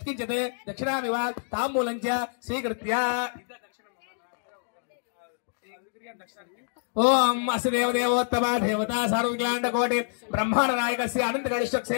ದಕ್ಷಿಣಾಮಿವ ತಾಂಬೂಲಂಚ ಸ್ವೀಕೃತ್ಯ. ಓಂ ಅಸ್ಯ ದೇವದೇವೋತ್ತಮ ದೇವತಾ ಸಾರ್ವಜ್ಞಾಂಡ ಕೋಟಿ ಬ್ರಹ್ಮಾಂಡ ನಾಯಕಸ್ಯ ಅನಂತ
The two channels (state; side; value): silent; right; digital silence